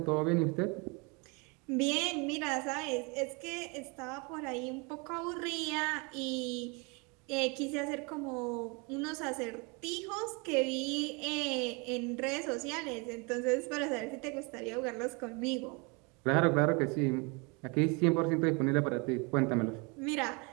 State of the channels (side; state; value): left; quieter; 30.7 dB